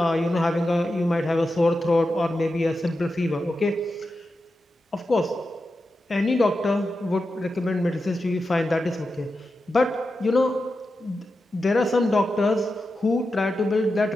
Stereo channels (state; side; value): normal; both; correlation 0.90